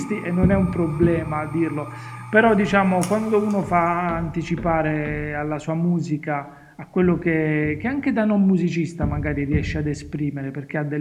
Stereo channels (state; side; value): identical; both; correlation 1.00